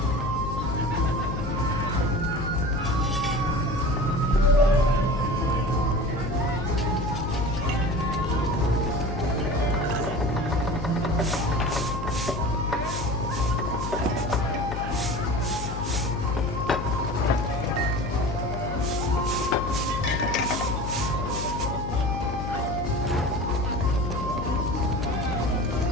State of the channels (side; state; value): left; noise; hum, 5 dB below the sound